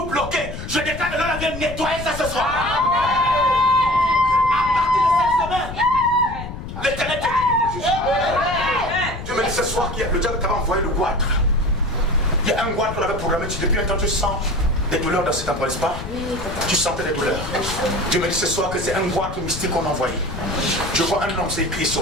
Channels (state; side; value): noise; left; rumble, 9 dB below the sound